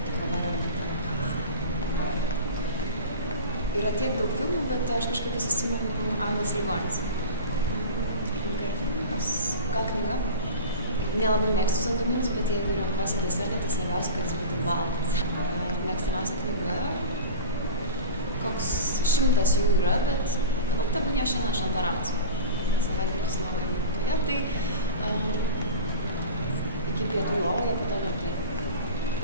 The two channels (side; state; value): both; inverted; correlation -0.31